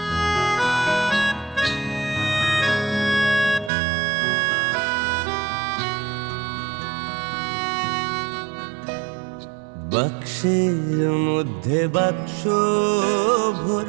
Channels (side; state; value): left; drops out; at 3.7 s